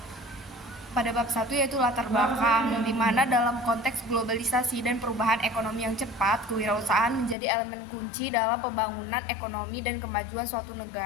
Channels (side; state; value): right; drops out; at 7.4 s